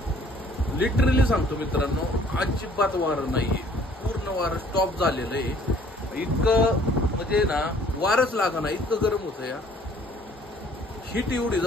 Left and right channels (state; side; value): normal; both; correlation 0.57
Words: लिटरली सांगतो मित्रांनो, अजिबात वारं नाहीये. पूर्ण वारं स्टॉप झालेलं आहे. इतकं म्हणजे ना वारच लागा ना, इतकं गरम होतं या. हीट एवढी